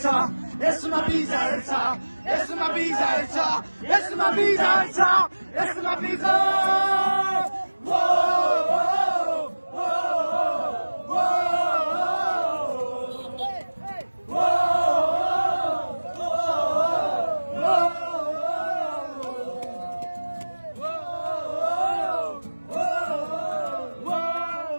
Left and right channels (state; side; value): inverted; both; correlation -1.00